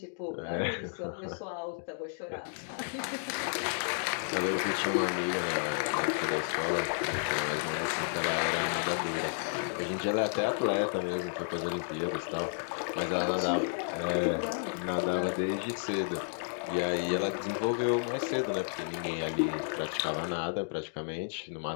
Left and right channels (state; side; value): silent; right; digital silence